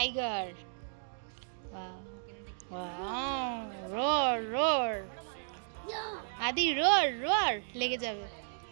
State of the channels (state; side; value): silent; left; digital silence